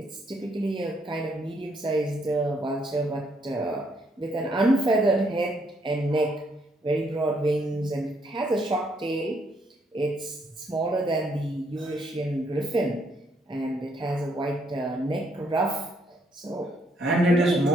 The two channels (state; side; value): normal; both; correlation 0.72